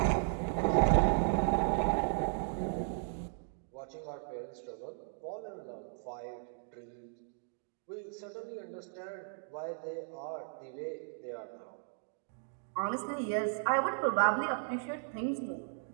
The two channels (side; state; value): left; silent; digital silence